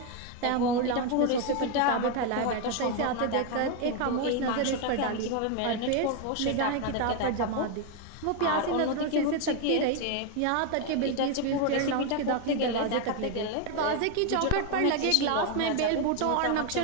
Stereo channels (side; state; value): both; different; correlation 0.01